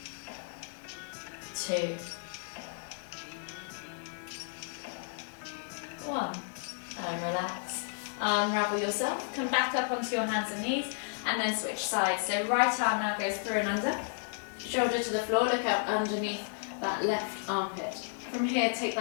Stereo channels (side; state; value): right; silent; 56 dB below the other